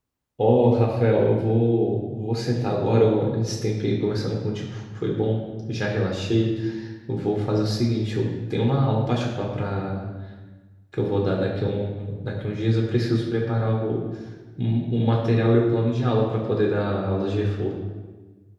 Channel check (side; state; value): both; identical; correlation 1.00